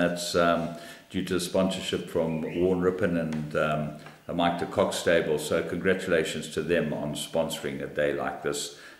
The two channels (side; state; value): both; identical; correlation 1.00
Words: due to sponsorship from Warren Rippon and the Mike de Kock stable. So congratulations to them on sponsoring a day like this